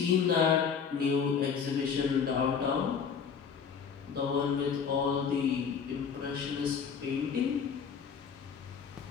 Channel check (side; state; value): right; quieter; 6.6 dB